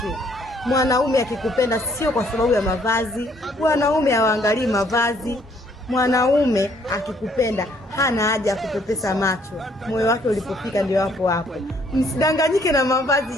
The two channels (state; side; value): normal; both; correlation 0.65